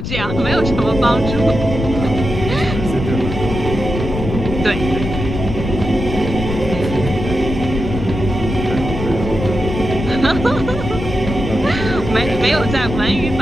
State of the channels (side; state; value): left; noise; rumble, 5 dB below the sound